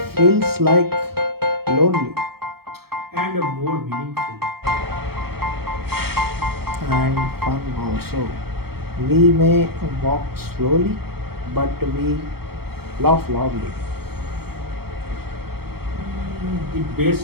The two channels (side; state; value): left; late; 0.95 ms